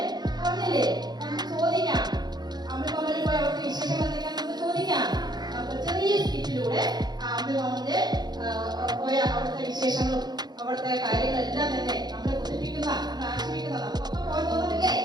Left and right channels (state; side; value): late; left; 0.20 ms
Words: പറഞ്ഞില്ലേ? നമുക്ക് ചോദിക്കാം, അമ്പിളിമാമന് പോയി അവിടുത്തെ വിശേഷങ്ങൾ എന്തൊക്കെയാ നമുക്ക് ചോദിക്കാം. നമുക്ക് ചെറിയ സ്കിറ്റിലൂടെ അമ്പിളിമാമന്റെ പോയ അവിടുത്തെ വിശേഷങ്ങളും അവിടുത്തെ കാര്യങ്ങളെല്ലാം തന്നെ നമ്മളെ കൊതിപ്പിക്കുന്ന, നമ്മളെ ആശ്രയിക്കുന്ന, നമുക്കൊക്കെ പോയി തോന്നുന്നില്ലേ?